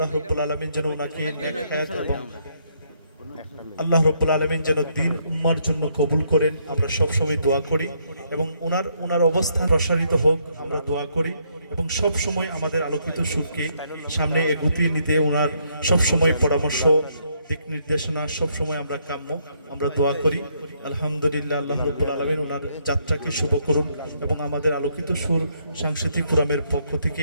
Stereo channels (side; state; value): both; inverted; correlation -0.72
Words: রাব্বুল আলামিন যেন ওনাকে নেক হায়াত এবং আল্লাহ রাব্বুল আলামিন যেন দ্বীন উম্মার জন্য কবুল করেন, আমরা সব সময় দোয়া করি। এবং ওনার অবস্থান প্রসারিত হোক, আমরা দোয়া করি। এবং সব সময় আমাদের আলোকিত সুরকে সামনে এগোতে নিতে ওনার সব সময় পরামর্শ, দিক নির্দেশনা সব সময় আমরা কাম্য, আমরা দোয়া করি। আলহামদুলিল্লাহ, আল্লাহ রাব্বুল আলামিন ওনার যাত্রাকে শুভ করুন। এবং আমাদের আলোকিত সুর সাংস্কৃতিক ফোরামের পক্ষ